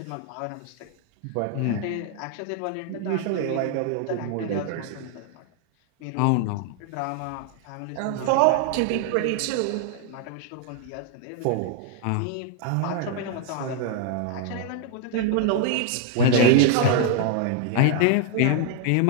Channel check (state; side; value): different; both; correlation 0.00